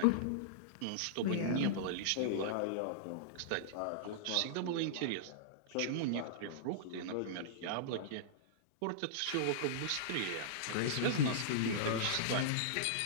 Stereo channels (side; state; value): both; different; correlation -0.02